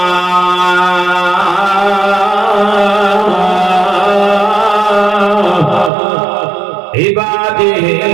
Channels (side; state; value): left; drops out; at 5.9 s